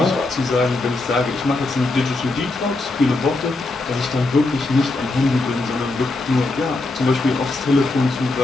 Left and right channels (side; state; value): right; quieter; 3.1 dB